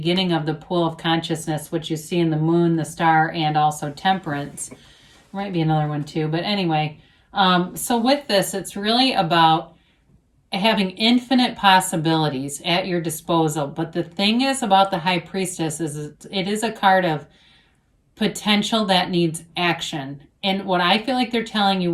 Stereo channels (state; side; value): identical; both; correlation 1.00